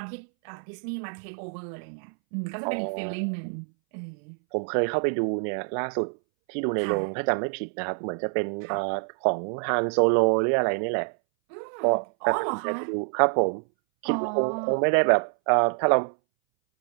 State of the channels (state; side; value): silent; left; 61 dB below the other